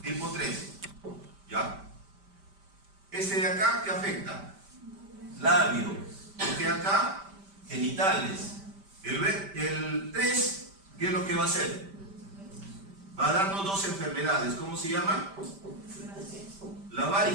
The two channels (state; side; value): late; left; 5.1 ms